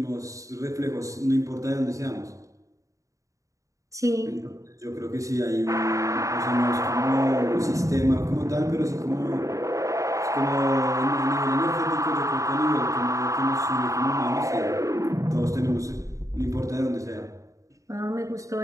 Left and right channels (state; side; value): late; left; 0.16 ms